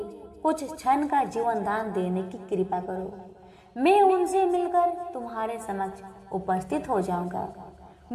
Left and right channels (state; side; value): identical; both; correlation 1.00